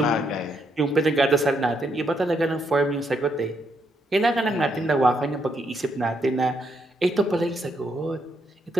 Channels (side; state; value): both; normal; correlation 0.76